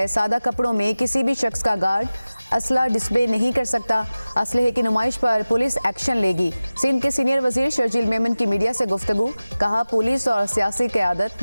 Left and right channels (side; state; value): both; inverted; correlation -0.96